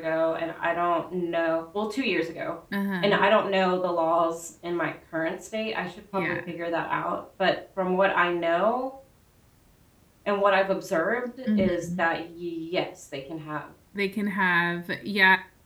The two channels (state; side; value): identical; both; correlation 1.00